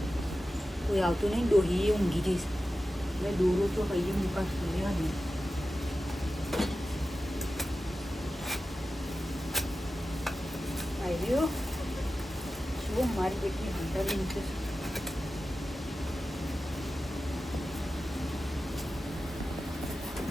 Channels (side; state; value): both; normal; correlation 0.93